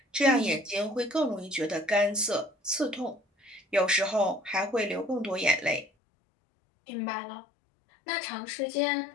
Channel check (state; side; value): drops out; right; at 5.9 s